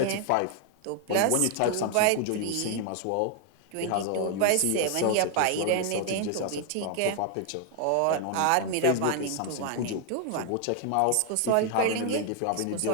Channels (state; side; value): different; both; correlation 0.00